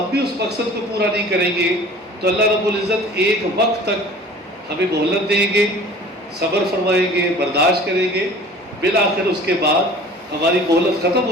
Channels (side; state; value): both; normal; correlation 0.45